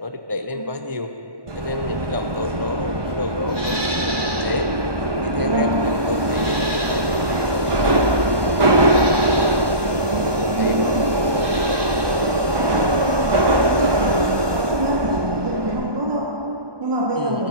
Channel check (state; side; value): late; left; 1.2 ms